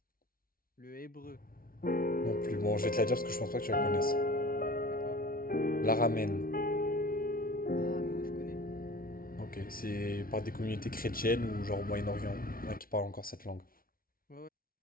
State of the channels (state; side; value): late; right; 0.43 ms